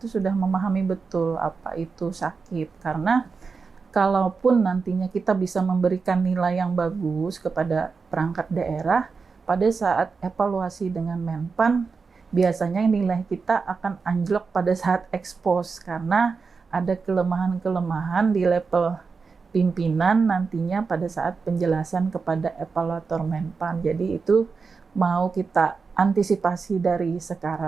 sudah memahami betul apa itu SAKIP. Karena kalaupun nantinya kita bisa memberikan nilai yang bagus kepada perangkat daerah, pada saat evaluasi dengan Menpan biasanya nilai kita akan anjlok pada saat expose, karena ada kelemahan-kelemahan di level pimpinan nantinya pada saat penjelasan kepada evaluator Menpan. Jadi itu mau kita antisipasi dari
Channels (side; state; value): left; quieter; 4.9 dB